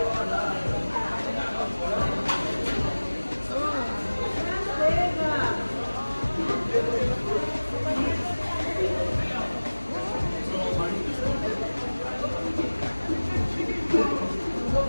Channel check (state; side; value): inverted; both; correlation -1.00